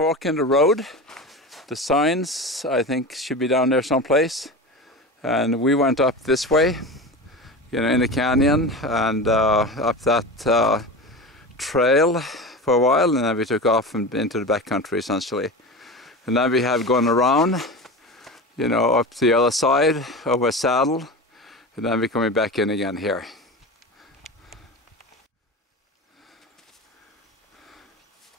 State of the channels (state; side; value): normal; both; correlation 0.27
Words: in the road. The signs, I think, should be down there someplace. And we went up this way, you know, in the canyon, and up that trail for a while, and then we took off and into the backcountry, essentially. And then we have gone around, you know, up the other side, over a saddle, and then we're coming back in again here.